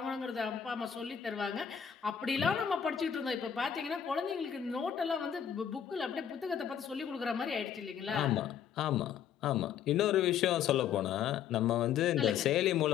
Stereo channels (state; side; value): quieter; right; 8.6 dB